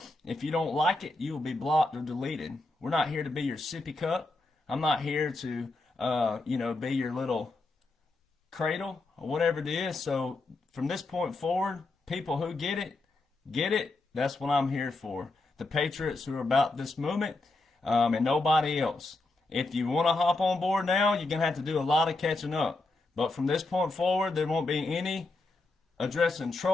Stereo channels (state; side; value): quieter; right; 3.2 dB